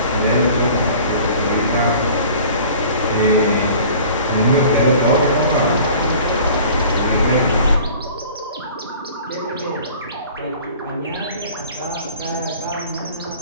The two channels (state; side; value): inverted; both; correlation -0.47